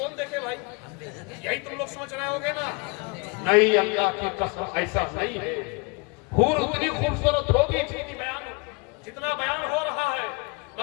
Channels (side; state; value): right; quieter; 30.1 dB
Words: دیکھے بھائی؟ یہی تم لوگ سوچ رہے ہوگے نا؟ نہیں، اللہ کی قسم ایسا نہیں ہے۔ حور اتنی خوبصورت ہوگی جتنا بیان ہو رہا ہے،